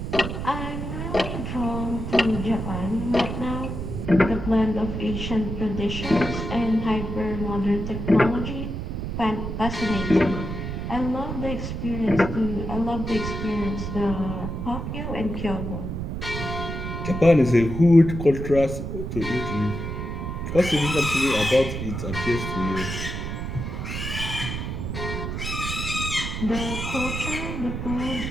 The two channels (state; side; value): noise; right; rumble, 5 dB below the sound